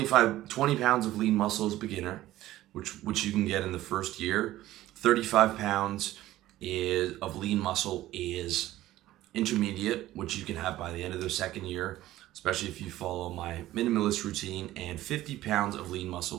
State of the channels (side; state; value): left; quieter; 15.3 dB